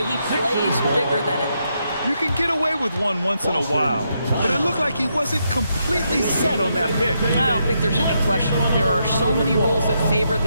he plays bigger than it. You can get away with one once in a while, but it looked like he wasn't completely set on that pick. I don't think there's any question. There are so many rules that favor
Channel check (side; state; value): both; inverted; correlation -0.80